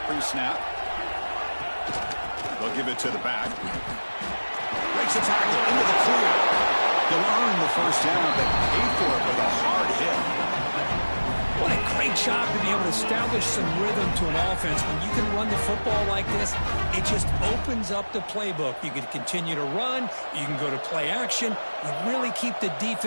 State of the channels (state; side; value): inverted; both; correlation -1.00